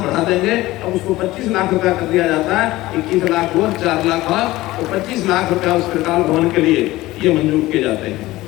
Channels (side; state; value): right; quieter; 17.8 dB